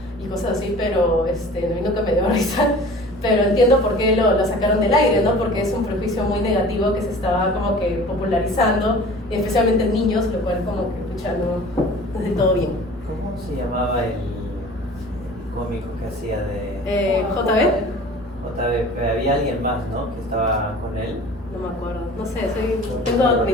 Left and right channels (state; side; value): normal; both; correlation 0.43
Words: y cosas así, pero a mí nunca me dio risa. Pero entiendo por qué lo sacaron del aire, ¿no? Porque es un prejuicio muy negativo que se estaba como que popularizando, especialmente en niños, lo cual como que, pucha, no es del todo bien. ¿Cómo se llamaba el cómico que hacía de...? JB. había alguien más, ¿no? Que estaba con él. No me acuerdo, no sé, tengo